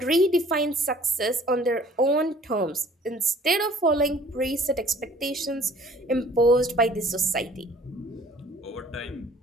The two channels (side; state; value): both; normal; correlation 0.53